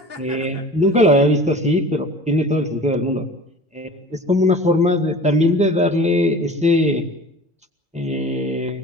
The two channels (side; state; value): both; normal; correlation 0.41